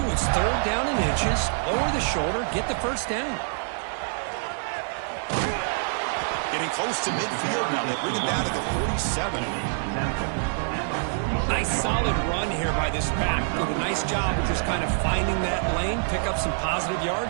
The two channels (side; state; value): left; silent; 61 dB below the other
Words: it's 3rd down and inches, lower the shoulder, get the first down. Getting close to midfield now. They bring it down to the 47. Nice solid run here by this back. Did a nice job of just kind of finding that lane, pick up some positive